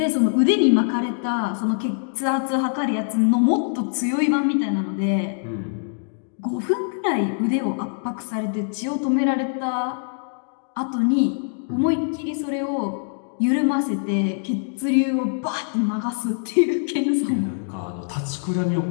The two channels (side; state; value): right; silent; digital silence